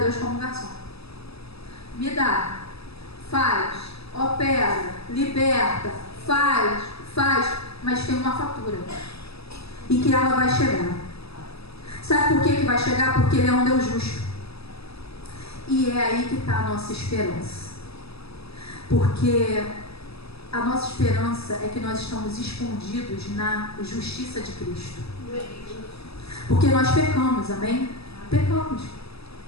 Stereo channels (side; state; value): right; late; 0.78 ms